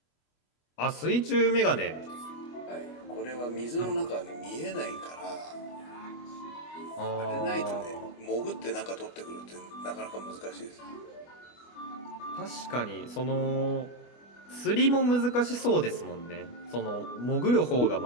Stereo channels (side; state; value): right; late; 25 ms